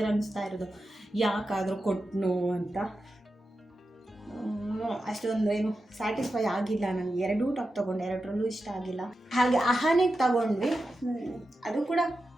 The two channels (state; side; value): normal; both; correlation 0.91